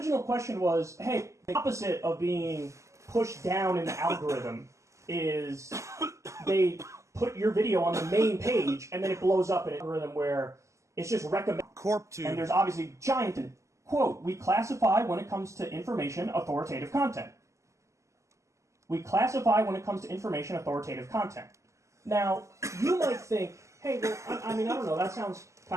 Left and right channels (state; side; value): late; left; 0.14 ms